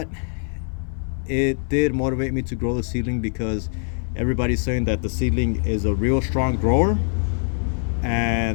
it did motivate me to grow the seedling because everybody's saying that the seedling is a real strong grower,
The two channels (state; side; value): silent; right; 62 dB below the other